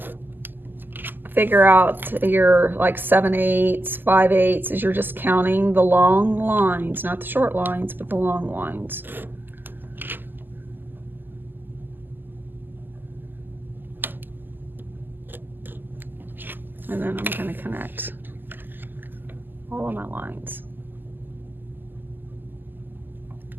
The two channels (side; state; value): left; late; 0.091 ms